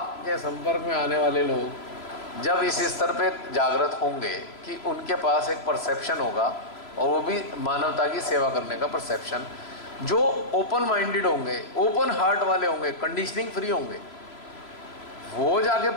संपर्क में आने वाले लोग जब इस स्तर पे जागृत होंगे कि उनके पास एक परसेप्शन होगा, और वो भी मानवता की सेवा करने का परसेप्शन, जो ओपन माइंडेड होंगे, ओपन हार्ट वाले होंगे, कंडीशनिंग फ्री होंगे, वो जाके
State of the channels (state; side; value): late; right; 3.0 ms